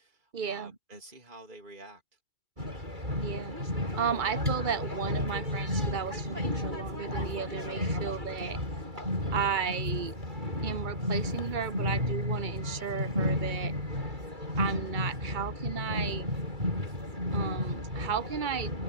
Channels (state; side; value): late; left; 2.3 ms